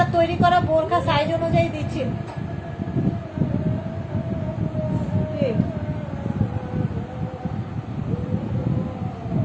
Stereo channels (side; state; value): both; identical; correlation 1.00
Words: তৈরি করা বোরখা সাইজ অনুযায়ী দিচ্ছি। ঠিক।